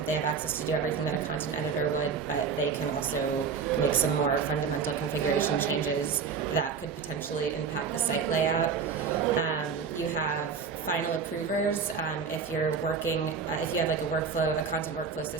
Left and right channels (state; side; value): quieter; left; 5.8 dB